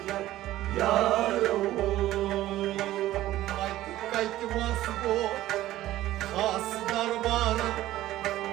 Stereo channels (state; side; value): quieter; left; 14.9 dB